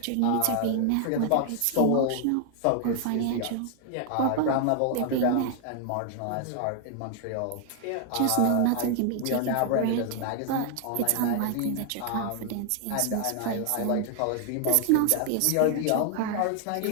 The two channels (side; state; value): both; different; correlation 0.00